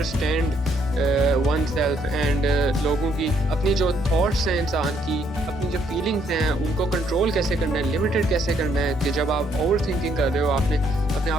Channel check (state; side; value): normal; both; correlation 0.70